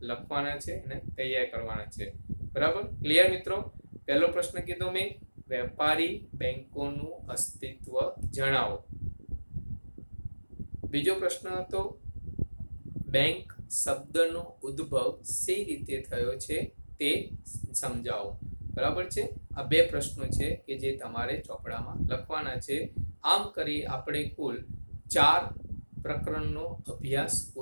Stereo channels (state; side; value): inverted; both; correlation -1.00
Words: લખવાના છે અને તૈયાર કરવાના છે. બરાબર, ક્લિયર મિત્રો? પહેલો પ્રશ્ન કીધો મેં, વેપારી બેંકોનું અસ્તિત્વ જણાવો. બીજો પ્રશ્ન હતો બેંક શબ્દનો ઉદ્ભવ સી રીતે થયો છે તે સમજાવો. બરાબર છે. આ 2 પ્રશ્નો છે કે જે તમારે ચોપડામાં લખવાના છે. આમ કરી આપણે કુલ 4 પ્રકરણનો અભ્યાસ